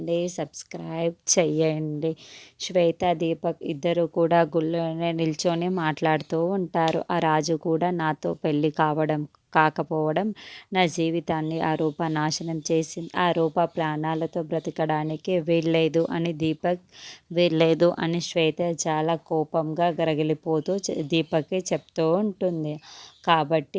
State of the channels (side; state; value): both; identical; correlation 1.00